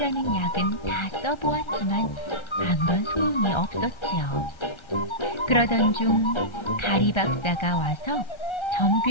약은 다 써보았지만 아무런 소용이 없었지요. 그러던 중 가리 박사가 와서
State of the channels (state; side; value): late; right; 1.3 ms